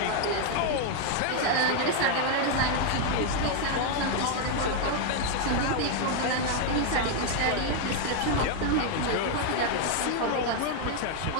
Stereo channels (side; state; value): both; different; correlation 0.00